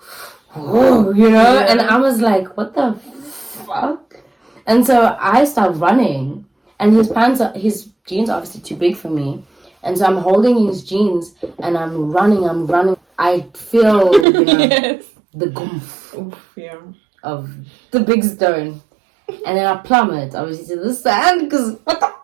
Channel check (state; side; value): drops out; left; at 14.2 s